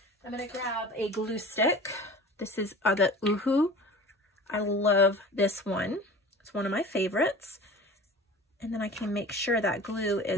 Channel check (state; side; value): normal; both; correlation 0.39